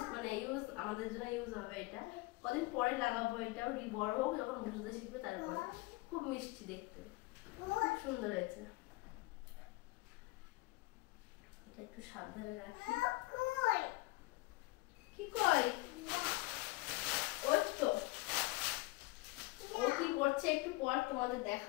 মানে ইউজ আমাদের জন্য ইউজ হবে। এটা কদিন পরে লাগাবো, এটাও বড় হোক, যখন বুঝতে শিখবে তারপরে। খুব মিষ্টি দেখতে, খুব সুন্দর হয়েছে। এটা একটু সাবধানে রাখি। কি কই ওই তো, ও কি করছে একটু পর তোমাদের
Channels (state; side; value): quieter; right; 22.2 dB